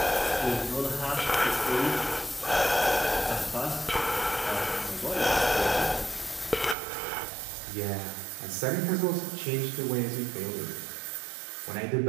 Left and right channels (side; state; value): left; drops out; at 6.8 s